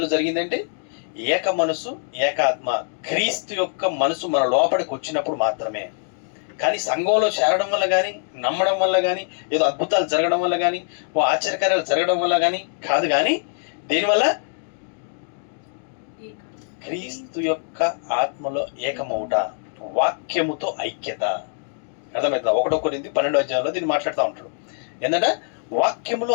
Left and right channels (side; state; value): right; silent; digital silence